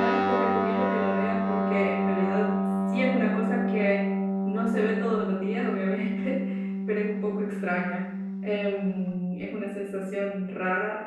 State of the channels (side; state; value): both; identical; correlation 1.00